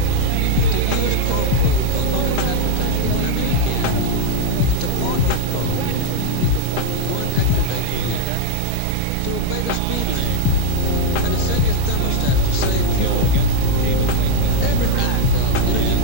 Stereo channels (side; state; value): both; different; correlation -0.01